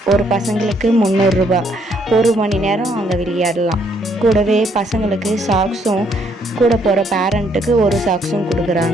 ஒரு பசங்களுக்கு 300 ரூபா, 1 மணி நேரம் அங்கே விளையாடலாம். கூடவே பசங்களுக்கு சாக்ஸும், கூட போகிற பேரண்ட்டுக்கு ஒரு சாக்ஸும்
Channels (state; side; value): normal; both; correlation 0.69